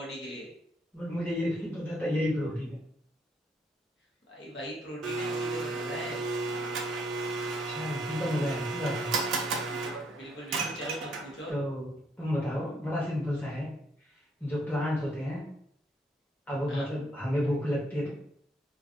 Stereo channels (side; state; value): both; normal; correlation 0.70